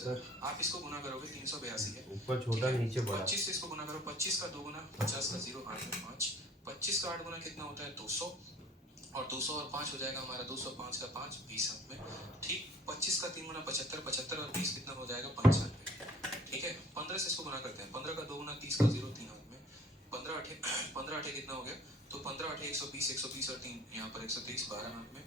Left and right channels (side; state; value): both; normal; correlation 0.52